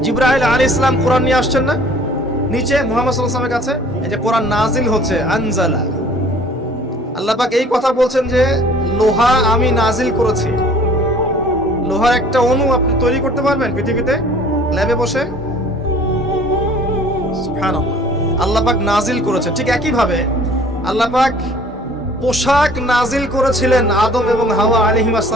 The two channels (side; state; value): both; normal; correlation 0.52